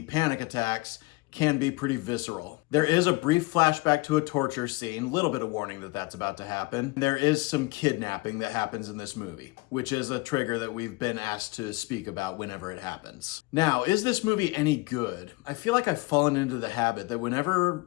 panic attacks, can be pretty visceral. There is a brief flashback to a torture scene, little bit of warning that that's about to happen. There is some kidnapping that happens in this movie, which is a trigger that we've been asked to speak about whenever it happens. Now, is this movie any good? I feel like I've fallen into the habit that whenever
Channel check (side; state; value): right; quieter; 23.8 dB